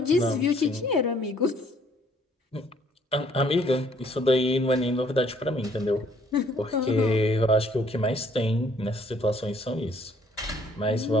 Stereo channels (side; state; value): both; normal; correlation 0.62